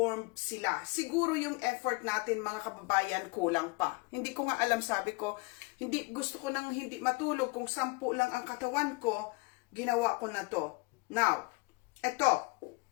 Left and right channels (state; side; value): quieter; right; 26.7 dB